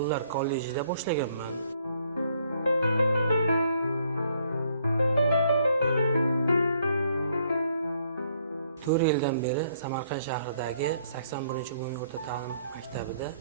kollejida boshlaganman. 4 yildan beri Samarqand shahridagi 81-umumiy o'rta ta'lim maktabida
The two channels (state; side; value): inverted; both; correlation -0.67